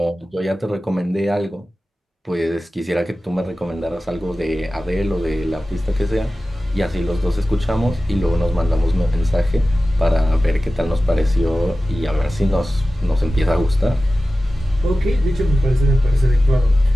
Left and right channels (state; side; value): normal; both; correlation 0.95